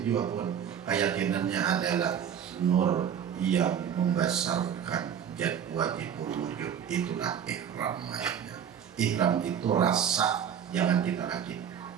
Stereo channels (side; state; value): left; quieter; 8.5 dB